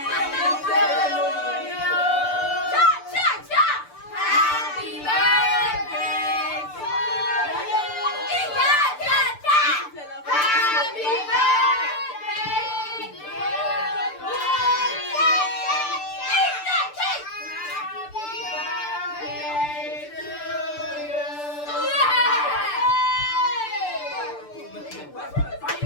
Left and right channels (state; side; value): late; right; 6.8 ms